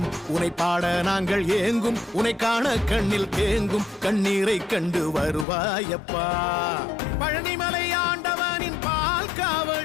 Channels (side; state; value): right; drops out; at 5.5 s